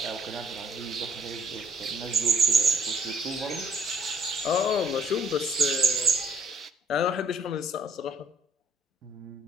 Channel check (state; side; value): normal; both; correlation 0.60